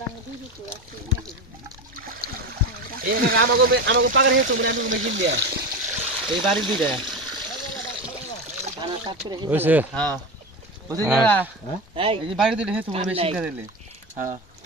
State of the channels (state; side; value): normal; both; correlation 0.22